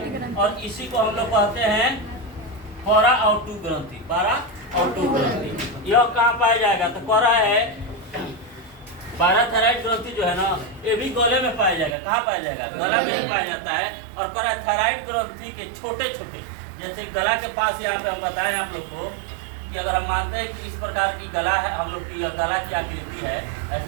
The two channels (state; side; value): drops out; left; at 12.0 s